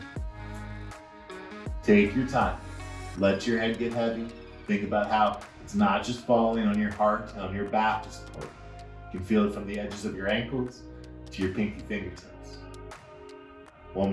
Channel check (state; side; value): identical; both; correlation 1.00